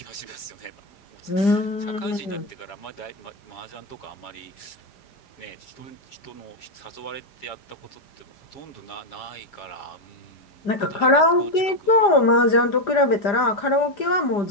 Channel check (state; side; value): late; right; 5.0 ms